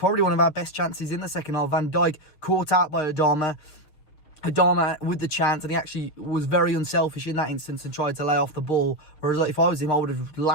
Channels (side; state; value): right; late; 6.8 ms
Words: one of our best chances in the second half. Van Dijk caught out by Adama with the chance, and he actually was very unselfish in that instance and tried to lay off the ball, whereas if I was him, I would have